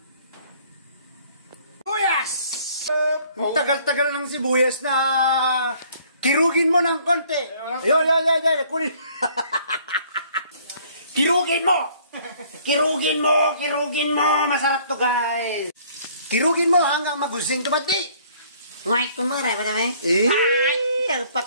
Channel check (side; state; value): both; inverted; correlation -0.58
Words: Sibuyas! Ang tagal-tagal ng sibuyas na kirugin mo ng konti. Yo, kunin. Kirugin mo! Kirugin mo! Masarap to guys! Kirugin mo hanggang magusing tumati. Ngay, kumara ba naman? Ay, ang